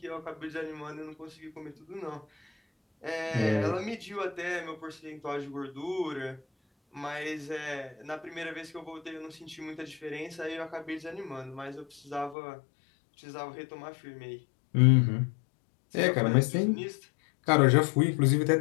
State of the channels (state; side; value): drops out; right; at 12.4 s